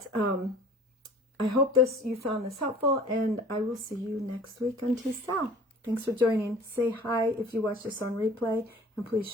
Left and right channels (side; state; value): both; normal; correlation 0.47